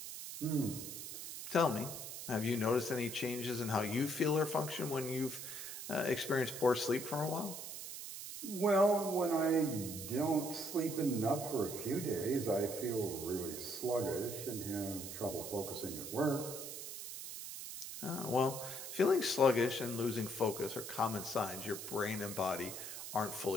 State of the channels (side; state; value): right; noise; hiss, 8 dB below the sound